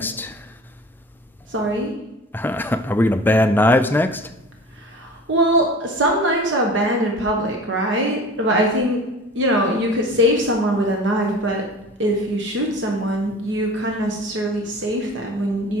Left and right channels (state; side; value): normal; both; correlation 0.40